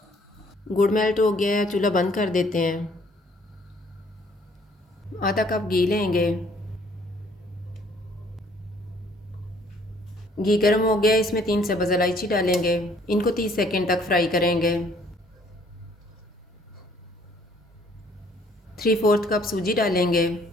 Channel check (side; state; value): both; normal; correlation 0.61